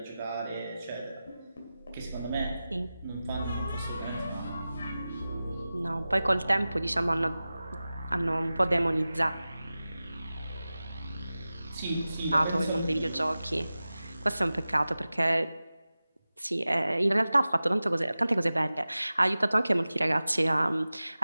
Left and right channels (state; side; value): inverted; both; correlation -0.96